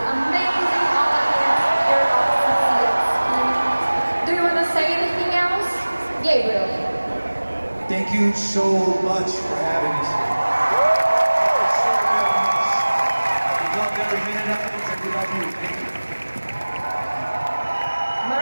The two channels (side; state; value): both; inverted; correlation -1.00